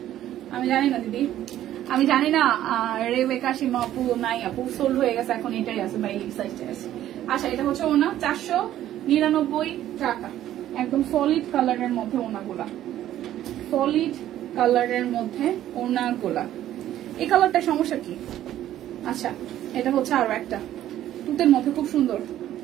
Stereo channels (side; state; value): left; quieter; 12.5 dB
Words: আমি জানি না দিদি, আমি জানি না। রেবেকা সীমা আপু নাই, আপু সোল্ড হয়ে গেছে, এখন এটাই আছে বা এই সাইজটাই আছে। আচ্ছা, এটা হচ্ছে ওনা 499 টাকা। একদম সলিড কালারের মধ্যে ওনাগুলা, সলিড কালারের মধ্যে ওনাগুলা। এই কালারটা সমস্যা কি? আচ্ছা, এটা হচ্ছে আরো একটা তুতের মধ্যে খুব সুন্দর।